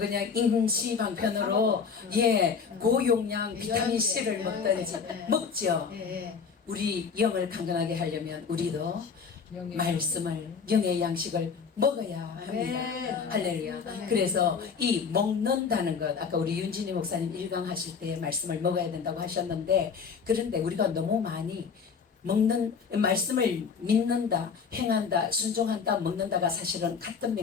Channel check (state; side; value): quieter; right; 5.9 dB